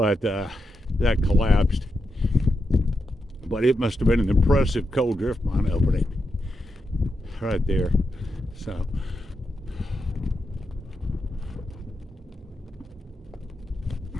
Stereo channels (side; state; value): both; normal; correlation 0.86